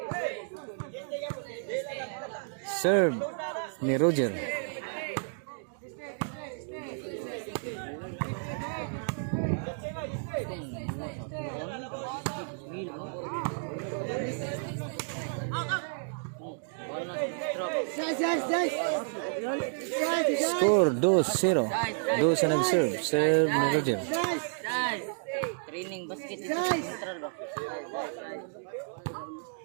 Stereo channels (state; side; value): silent; left; digital silence